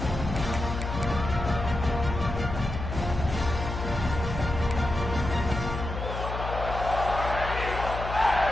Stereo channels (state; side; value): noise; left; hum, 6 dB below the sound